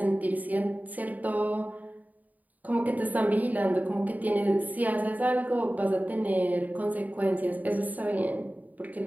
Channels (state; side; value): late; left; 0.078 ms